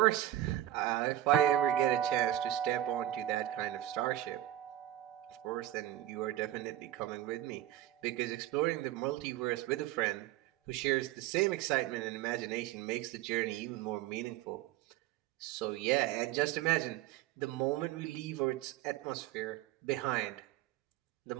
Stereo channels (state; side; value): quieter; left; 13.5 dB